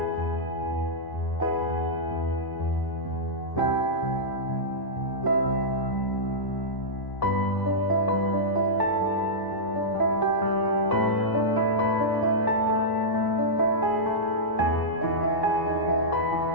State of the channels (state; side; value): late; right; 1.0 ms